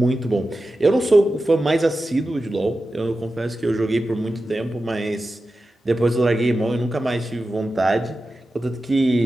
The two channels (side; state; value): both; normal; correlation 0.93